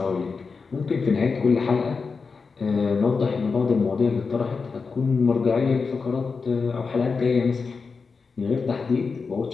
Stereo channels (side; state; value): right; quieter; 4.9 dB